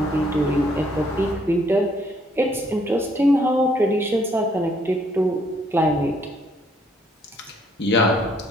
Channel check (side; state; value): both; normal; correlation 0.67